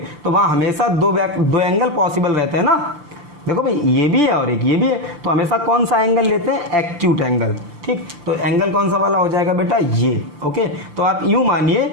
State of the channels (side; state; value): left; late; 6.7 ms